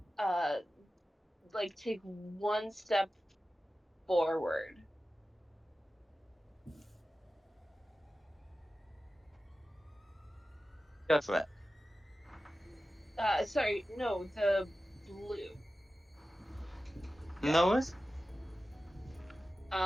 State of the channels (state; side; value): normal; both; correlation 0.94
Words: like take one step forward. Go for it. Sorry, no, the blue. No worries.